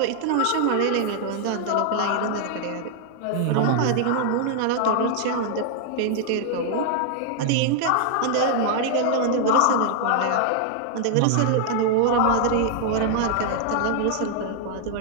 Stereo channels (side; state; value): both; different; correlation 0.00